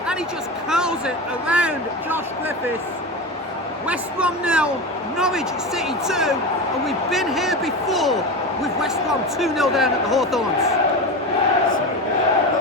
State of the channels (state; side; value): normal; both; correlation 0.23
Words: and he just curls it around Josh Griffiths. West Brom 0, Norwich City 2, and we've been here before with West Brom 2-0 down at the Hawthorns.